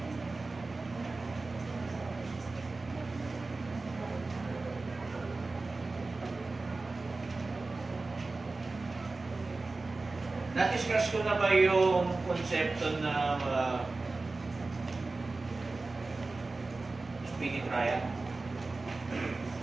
Na-discuss ko na ba yung konsepto ng speedy trial?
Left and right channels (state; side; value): quieter; left; 3.5 dB